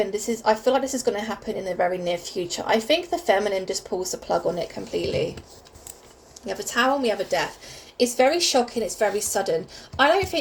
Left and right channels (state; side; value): identical; both; correlation 1.00